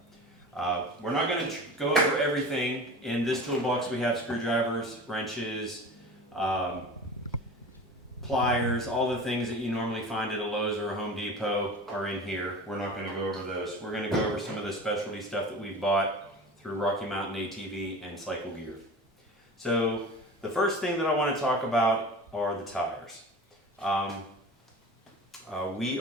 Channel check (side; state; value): both; normal; correlation 0.35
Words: We're not going to go over everything. In this toolbox we have screwdrivers, wrenches, pliers, all the things that you normally find at a Lowe's or a Home Depot are in here. We're not going to go over those. We're going to go over some of the specialty stuff that we bought through Rocky Mountain ATV and Cycle Gear. So the first thing that I want to talk about are the tires. We